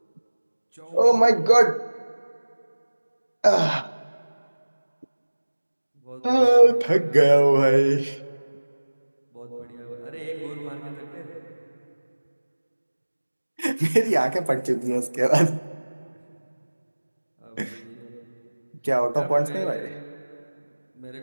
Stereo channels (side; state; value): both; inverted; correlation -1.00